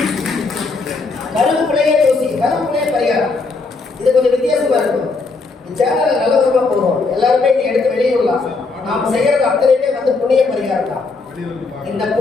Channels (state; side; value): quieter; right; 3.9 dB